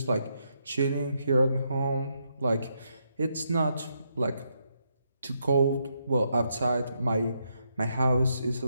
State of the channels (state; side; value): inverted; both; correlation -0.79